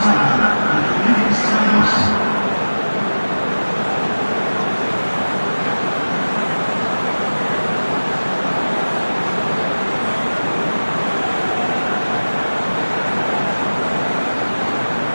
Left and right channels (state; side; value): inverted; both; correlation -1.00